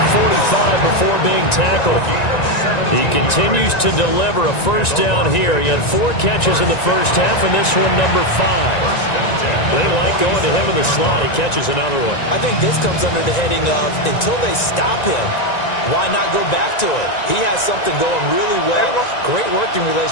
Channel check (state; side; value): late; right; 1.9 ms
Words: 45 before being tackled. He continues to deliver a first down here. He had 4 catches in the first half, and this one number 5. They like going to him in the slot. He catches another one. I think this comes under the heading of until they stop him, why not go back to it? He has something going really well. Great working